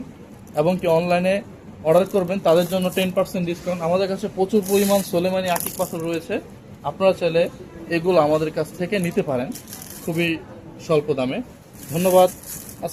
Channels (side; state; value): both; identical; correlation 1.00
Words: এবং কি অনলাইনে অর্ডার করবেন, তাদের জন্য 10% ডিসকাউন্ট। আমাদের কাছে প্রচুর পরিমাণ সোলেমানি আকিক পাথর রয়েছে। আপনারা চাইলে এগুলো আমাদের কাছ থেকে নিতে পারেন খুবই স্বল্প দামে। ধন্যবাদ।